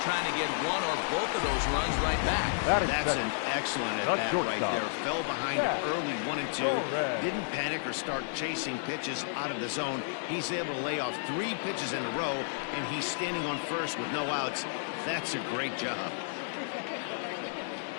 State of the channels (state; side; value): silent; right; digital silence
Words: trying to get one or both of those runs right back. That's an excellent at bat right there. Fell behind early 1-2. Didn't panic or start chasing pitches out of the zone. He's able to lay off 3 pitches in a row, and he's standing on first with no outs. That's a great job.